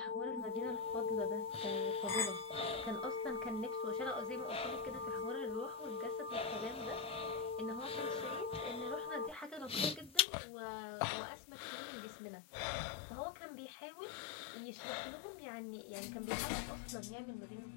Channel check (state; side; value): drops out; right; at 10.2 s